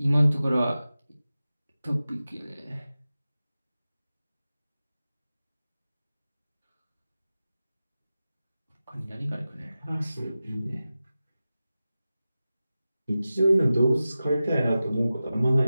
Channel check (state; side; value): inverted; both; correlation -0.95